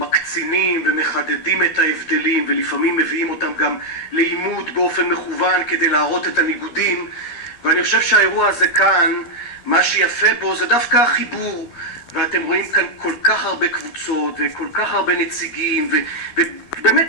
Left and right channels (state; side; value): late; right; 12 ms